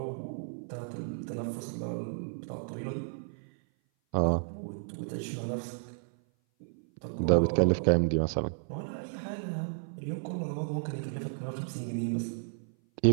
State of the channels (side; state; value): left; silent; 55 dB below the other